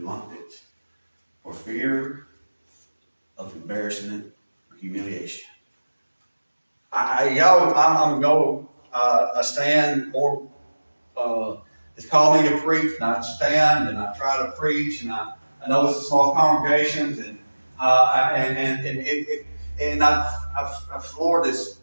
for fear of embarrassment or humiliation. I stand more. It's called me to preach, and I stand and I try to preach, and I know it's a small congregations, and the Lord has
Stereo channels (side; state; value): both; inverted; correlation -1.00